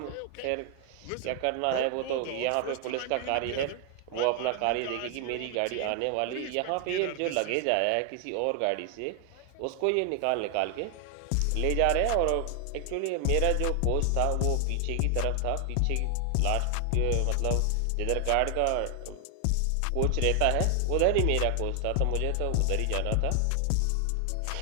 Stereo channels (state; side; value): different; both; correlation 0.00